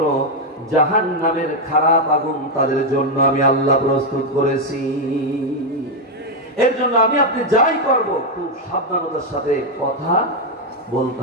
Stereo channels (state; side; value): normal; both; correlation 0.03